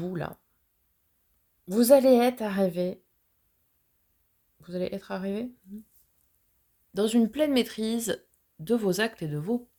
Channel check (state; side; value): identical; both; correlation 1.00